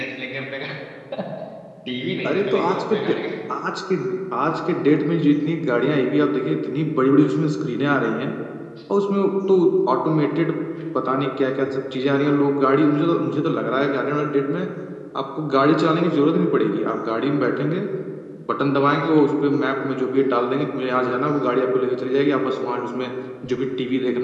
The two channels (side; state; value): both; identical; correlation 1.00